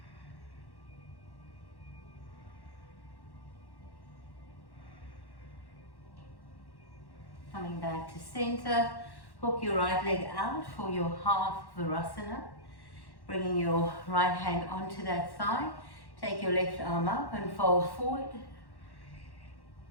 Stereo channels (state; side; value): late; right; 1.1 ms